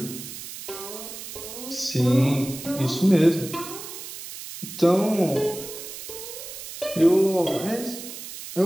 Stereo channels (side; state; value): right; noise; hiss, 11 dB below the sound